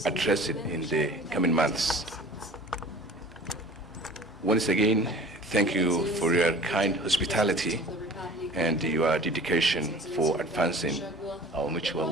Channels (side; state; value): both; normal; correlation 0.44